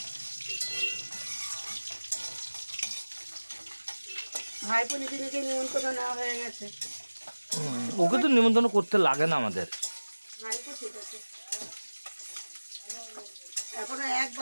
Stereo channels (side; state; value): both; inverted; correlation -1.00